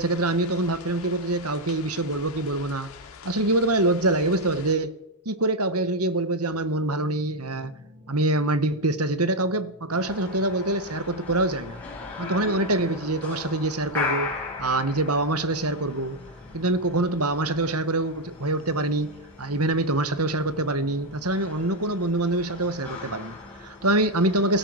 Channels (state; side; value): normal; both; correlation 0.04